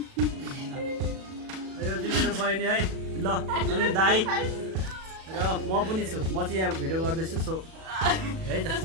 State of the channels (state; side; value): late; left; 37 ms